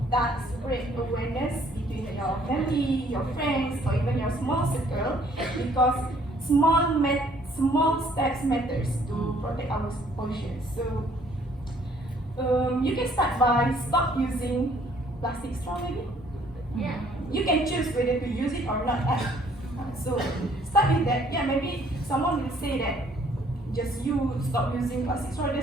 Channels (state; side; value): normal; both; correlation 0.61